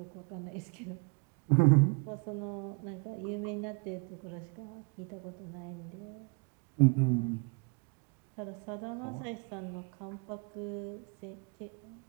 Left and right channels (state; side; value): quieter; left; 32.2 dB